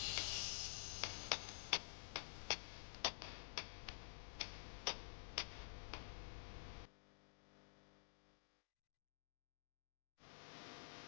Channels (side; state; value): right; silent; digital silence